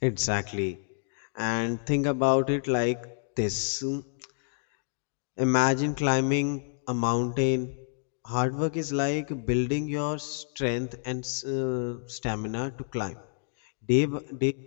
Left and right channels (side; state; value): right; silent; digital silence